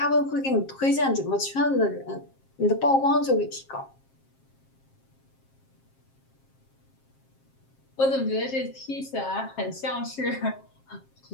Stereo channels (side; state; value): right; late; 7.5 ms